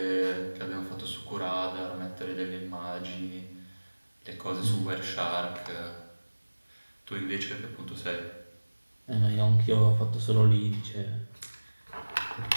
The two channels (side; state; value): both; inverted; correlation -1.00